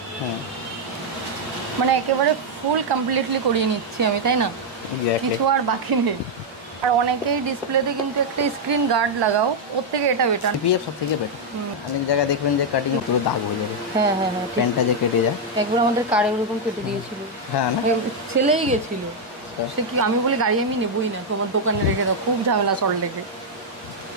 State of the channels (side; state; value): both; normal; correlation -0.01